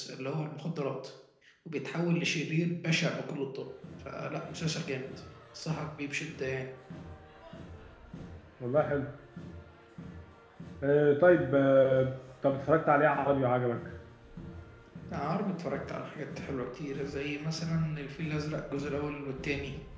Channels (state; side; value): identical; both; correlation 1.00